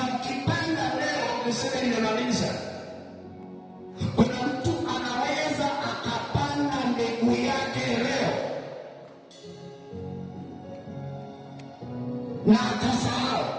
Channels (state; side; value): identical; both; correlation 1.00